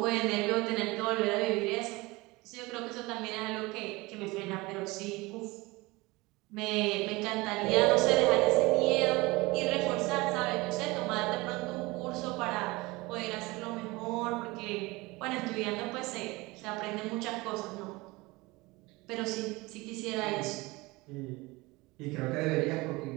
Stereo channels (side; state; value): left; quieter; 22.6 dB